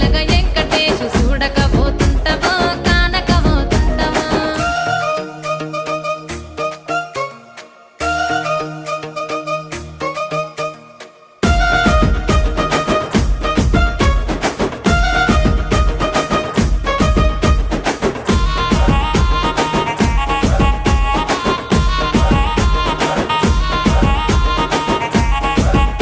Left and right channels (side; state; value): both; identical; correlation 1.00